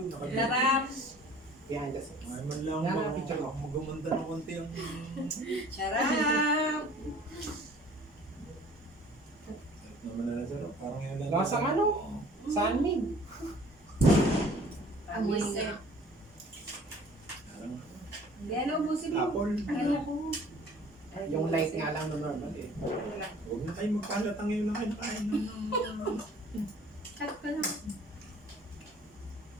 Tarap. Behind the scenes. Ay man lang Yan ba ang picture ko. magumanda ng konti ang... Charap! Naman na sir. Parang yun lang. Lasang ano? Sanmig. Amoy Amoy nga. Parang Hindi, ano, ubusin mo. apple. Ano ko? Yung light nga lang no normal eh. Huwag na kayo magkalatang ngayon na kayo nakain. Cut ka lang.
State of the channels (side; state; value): both; normal; correlation 0.50